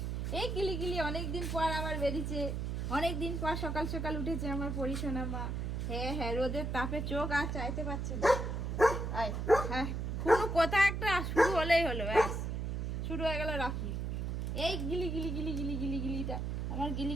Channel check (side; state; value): right; noise; hum, 2 dB below the sound